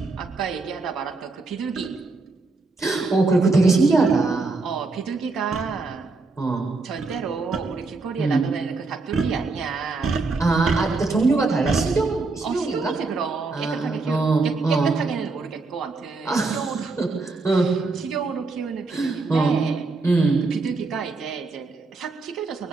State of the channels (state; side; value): quieter; left; 3.7 dB